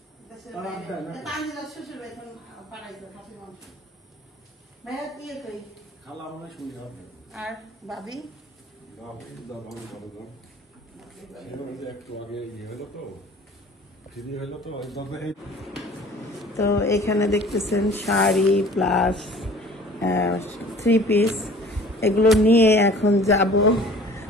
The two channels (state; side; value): normal; both; correlation 0.48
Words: শ্বশুর এখন পাড়াইছে খাসি মাংস। ভাইয়া দিয়ে কই? খালা মনে শুনি হবে। আর ভাবি? একটু আগে ইয়ে হলো তো, ঠিকই হলো তো। তো এখানে দেখতেছেন শাড়ি প্লাস 3 পিস, এগুলো নিয়ে এখন যাব